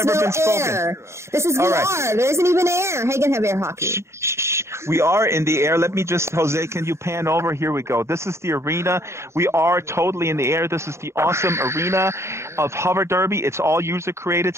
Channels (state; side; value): late; left; 0.13 ms